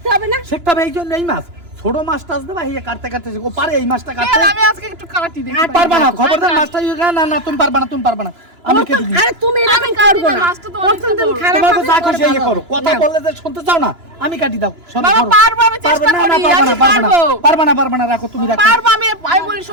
হবে না? শিখতে হবে এই জন্য। এই মাছ ছোট মাছ টাছ দেবা, এই কাটতে কাটতে ও পারে এই মাছটা কাটতে? কেন আমি আজকে একটু কাটি দেখি। পারবা না, খবরদার মাছটা না না তুমি পারবা না। আমি কেটে দিই। আরে তুমি আমি এরকম কাটি করবে না, না। মাছটা তো প্রথম অনেকটা দিন বড়। খারাপ তোমাকে হবে, যা পরে খুশি এই ভালো করো, হবে। কথা না। বললে যে শুনতে চাও না, আমি কাটি দাও। শোনো, বাবা ধরো। পারবো, আমি চেষ্টা করি, আমি পারবো। পারবা না, রাখো তুমি, রাখো। পারবো আমি বলি শোনো।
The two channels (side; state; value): left; late; 2.9 ms